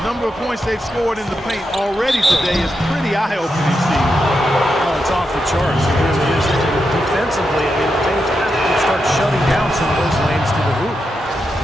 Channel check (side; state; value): both; normal; correlation 0.86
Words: number of points they've scored in the paint already today is pretty eye-opening, Steve. Oh, it's off the charts. It really is. Defensively, I mean, they have to start shutting down some of those lanes to the hoop.